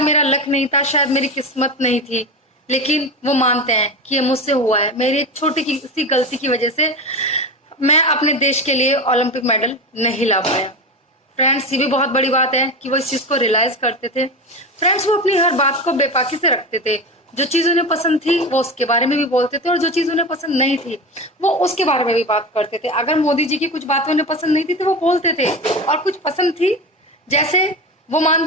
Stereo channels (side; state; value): both; normal; correlation 0.23